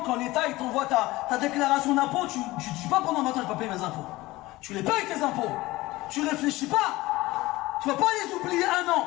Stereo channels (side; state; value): right; quieter; 19.2 dB